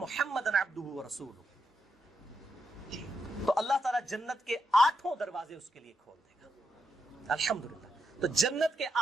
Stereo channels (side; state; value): both; normal; correlation 0.84